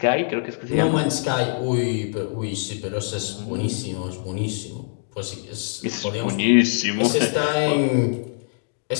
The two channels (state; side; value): silent; right; digital silence